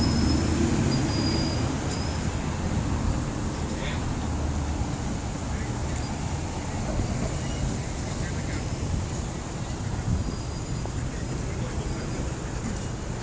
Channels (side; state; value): both; identical; correlation 1.00